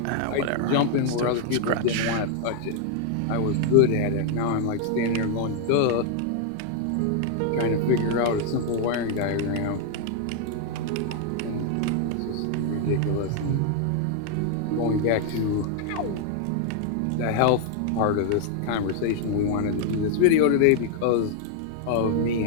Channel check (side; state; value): both; different; correlation 0.00